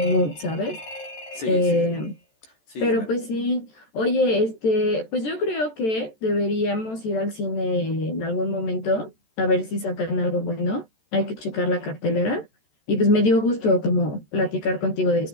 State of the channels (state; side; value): late; right; 14 ms